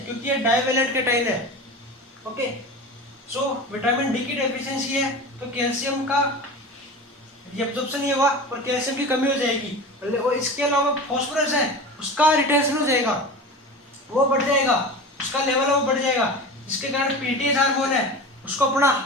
क्योंकि ये डाइवेलेंट कैटायन है। ओके, सो विटामिन डी की डेफिशिएंसी है तो कैल्शियम का रीअब्जॉर्प्शन नहीं होगा और कैल्शियम की कमी हो जाएगी। और इसके अलावा फॉस्फोरस है उसका रिटेंशन हो जाएगा, वो बढ़ जाएगा, उसका लेवल है वो बढ़ जाएगा, जिसके कारण पीटीएच हार्मोन है उसको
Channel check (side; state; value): both; normal; correlation 0.32